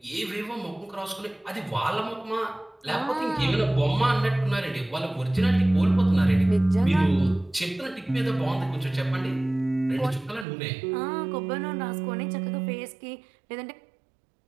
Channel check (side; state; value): left; drops out; at 10.5 s